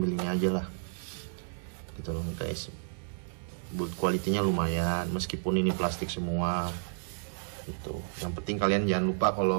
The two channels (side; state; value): left; silent; digital silence